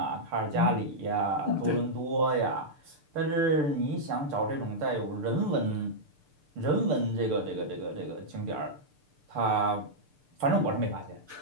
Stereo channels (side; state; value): left; late; 6.8 ms